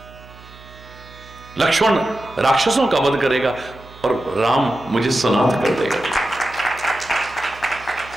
लक्ष्मण राक्षसों का वध करेगा और राम मुझे सनाथ कर देगा।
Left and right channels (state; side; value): noise; right; hum, 21 dB below the sound